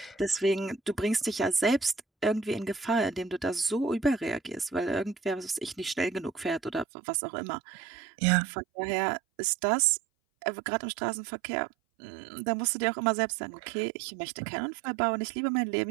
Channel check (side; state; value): left; drops out; at 6.9 s